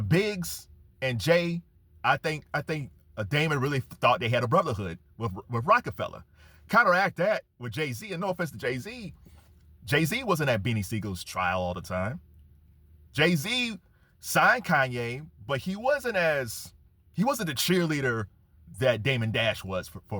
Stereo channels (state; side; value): identical; both; correlation 1.00